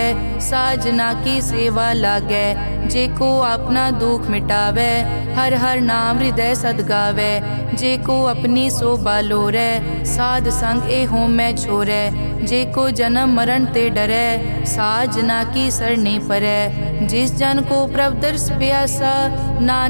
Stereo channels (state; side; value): inverted; both; correlation -1.00